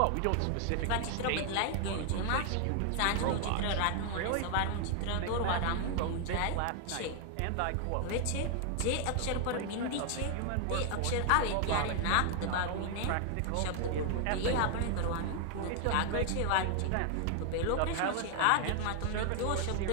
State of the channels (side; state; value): both; different; correlation 0.00